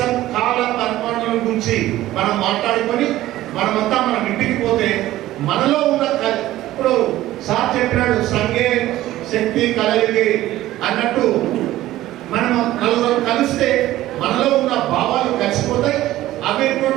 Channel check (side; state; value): left; quieter; 15.2 dB